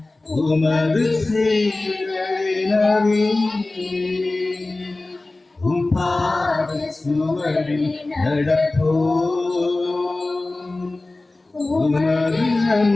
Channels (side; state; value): right; quieter; 3.1 dB